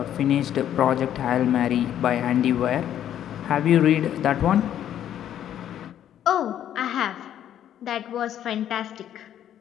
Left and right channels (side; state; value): right; quieter; 10.6 dB